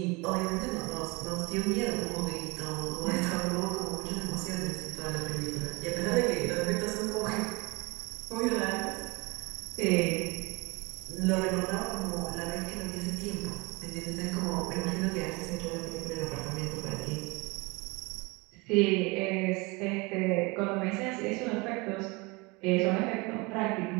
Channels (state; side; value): quieter; left; 26.2 dB